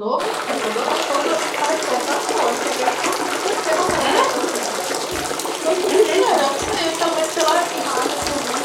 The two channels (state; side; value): identical; both; correlation 1.00